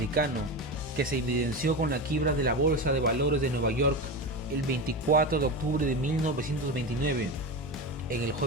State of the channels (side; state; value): both; normal; correlation 0.21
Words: que se evidenció con la quiebra de la Bolsa de Valores de Nueva York el 24 de octubre de 1929, en el